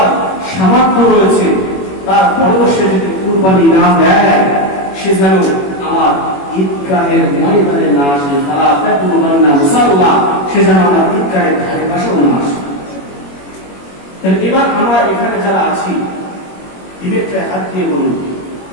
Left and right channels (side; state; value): right; late; 21 ms